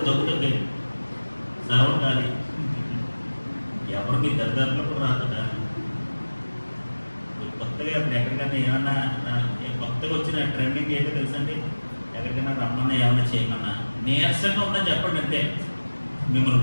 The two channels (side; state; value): both; inverted; correlation -1.00